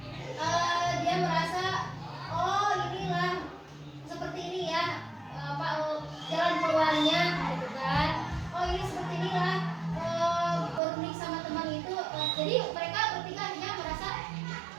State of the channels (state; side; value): drops out; left; at 10.8 s